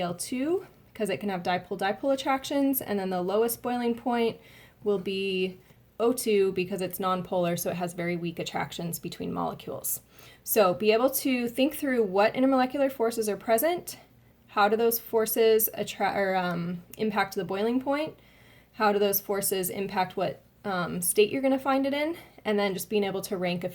because it can have dipole-dipole attractions. And then the lowest boiling point will be O2, because it's nonpolar, so it has very weak attractions between molecules. So be able to think through what intermolecular forces are present, how do those forces impact the boiling point, how do those forces impact what state you're going to find it in, and then just being able to rank a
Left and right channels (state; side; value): identical; both; correlation 1.00